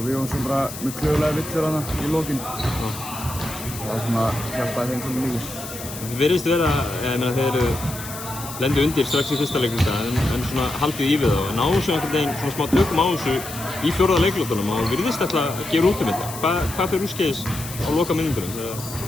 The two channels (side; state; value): left; noise; hiss, 11 dB below the sound